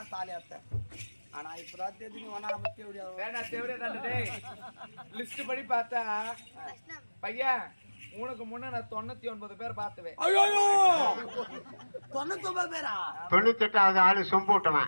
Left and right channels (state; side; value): inverted; both; correlation -1.00